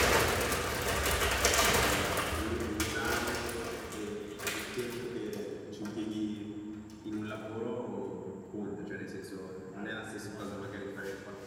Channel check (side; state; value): both; identical; correlation 1.00